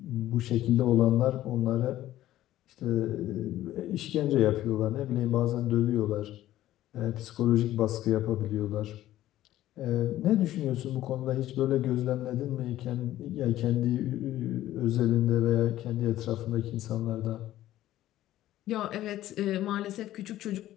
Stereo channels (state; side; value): quieter; right; 14.0 dB